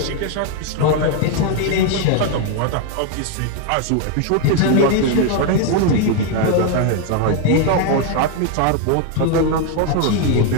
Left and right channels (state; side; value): different; both; correlation 0.01